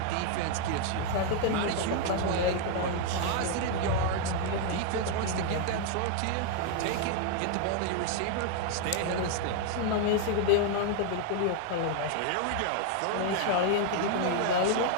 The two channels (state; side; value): different; both; correlation 0.00